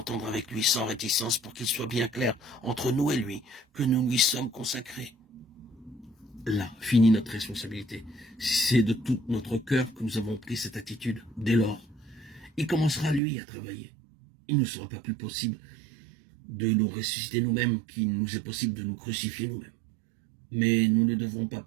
avec lui sans réticence pour qu'il soit bien clair entre nous et lui que nous lui sommes consacrés. Là finit notre responsabilité. C'est de tout notre cœur que nous avons pris cette attitude. Dès lors, il commencera lui à travailler. Il ne sera pas plus possible de nous ressusciter nous-mêmes qu'il nous est possible de nous crucifier nous-mêmes. Mais nous ne devons pas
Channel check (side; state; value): left; drops out; at 13.2 s